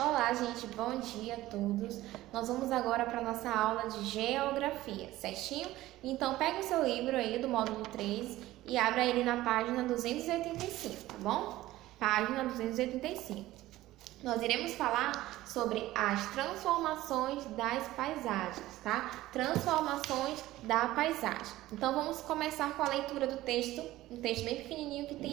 gente, bom dia a todos. Nós vamos agora para a nossa aula de geografia, certinho? Então, pega o seu livro aí do módulo 3 e abra ele na página 285, tá bom? Página 285. Nós iremos falar sobre as transformações das paisagens, tá? Transformações da paisagem. Então, vamos começar com a leitura do texto, um texto bem pequenininho que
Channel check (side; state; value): left; quieter; 16.2 dB